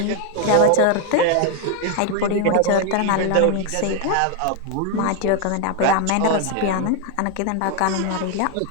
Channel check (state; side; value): different; both; correlation 0.00